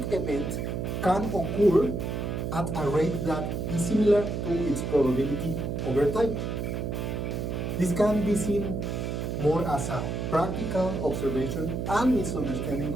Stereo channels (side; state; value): right; noise; hum, 2 dB below the sound